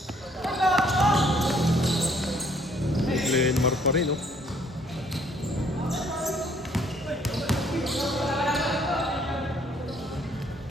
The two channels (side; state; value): both; normal; correlation 0.63